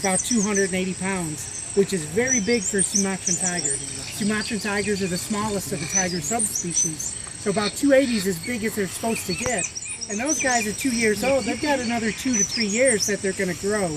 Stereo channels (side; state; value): both; identical; correlation 1.00